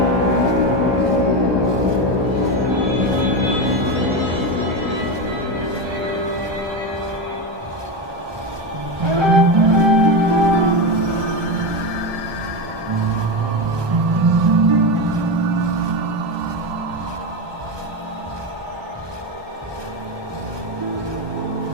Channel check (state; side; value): late; left; 1.2 ms